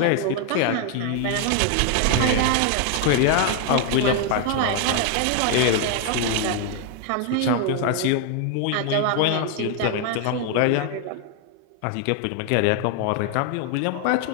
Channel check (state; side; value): different; both; correlation 0.00